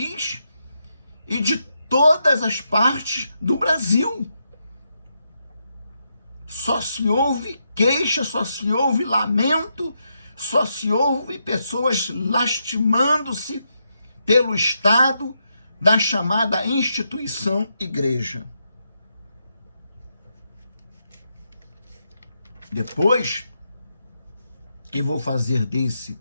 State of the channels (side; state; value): both; inverted; correlation -0.82